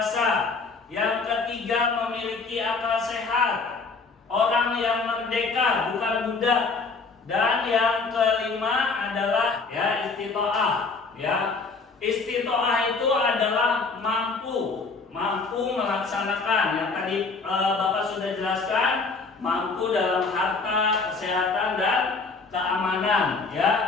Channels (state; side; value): quieter; right; 4.3 dB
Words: Yang ketiga memiliki akal sehat. Orang yang merdeka, bukan budak. Dan yang kelima adalah ya istitoah. Ya, istitoah itu adalah mampu melaksanakan yang tadi Bapak sudah jelaskan, mampu dalam harta, kesehatan, dan keamanan. Ya.